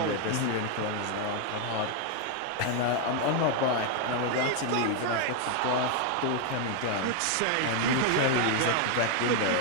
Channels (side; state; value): both; different; correlation 0.01